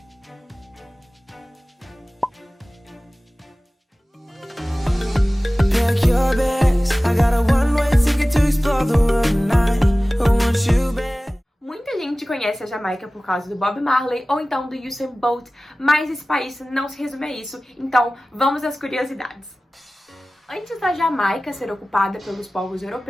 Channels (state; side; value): normal; both; correlation 0.97